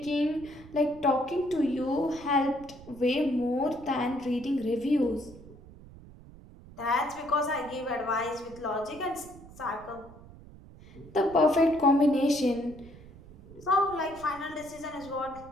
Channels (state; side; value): noise; right; rumble, 19 dB below the sound